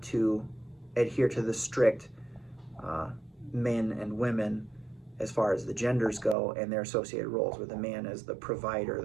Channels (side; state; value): left; drops out; at 6.4 s